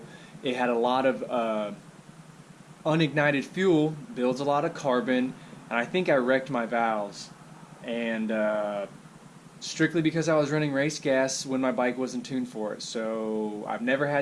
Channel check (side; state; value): both; identical; correlation 1.00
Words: it had a lot of unignited fuel, builds a lot of carbon, and I think I wrecked my valves. And strictly because I was running race gas when my bike wasn't tuned for it. So I've never